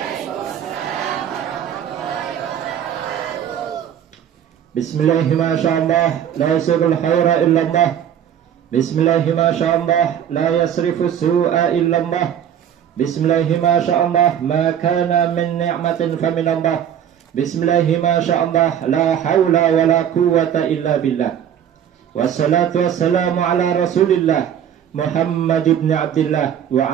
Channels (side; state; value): left; quieter; 9.5 dB